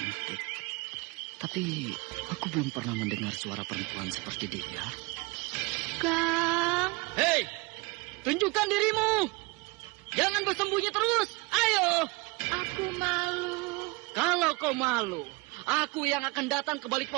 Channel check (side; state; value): left; quieter; 25.9 dB